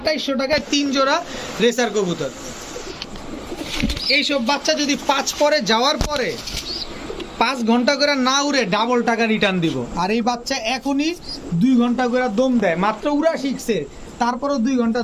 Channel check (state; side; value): identical; both; correlation 1.00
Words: টাকায় 3 জোড়া রেসার কবুতর। এইসব বাচ্চা যদি 5 পরে যাওয়ার পরে 5 ঘন্টা করে না উড়ে ডাবল টাকা রিটার্ন দিব। আর এই বাচ্চা এখনই 2 ঘন্টা করে দম দেয়, মাত্র উড়া শিখছে তারপরও 2 ঘন্টা